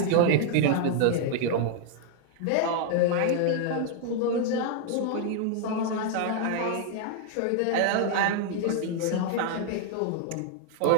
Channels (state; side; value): different; both; correlation 0.00